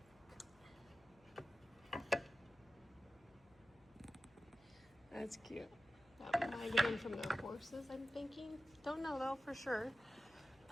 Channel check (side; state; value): left; noise; hum, 28 dB below the sound